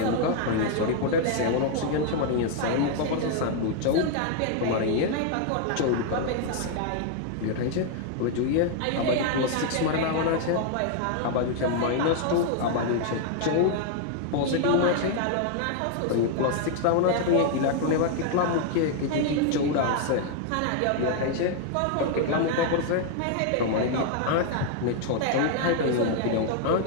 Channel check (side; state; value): both; different; correlation 0.00